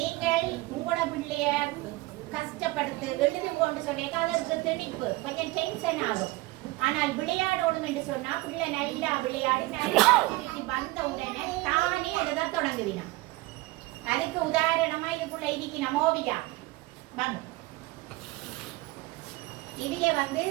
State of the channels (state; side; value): quieter; left; 20.8 dB